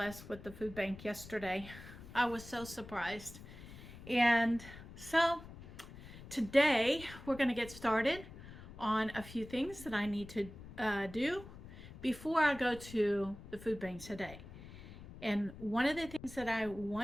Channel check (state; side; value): noise; left; rumble, 15 dB below the sound